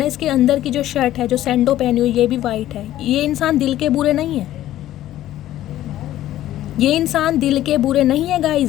है, इसके अंदर की जो शर्ट है, जो सैंडो पहनी हुई, ये भी वाइट है। ये इंसान दिल के बुरे नहीं है। ये इंसान दिल के बुरे नहीं है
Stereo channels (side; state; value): right; quieter; 13.6 dB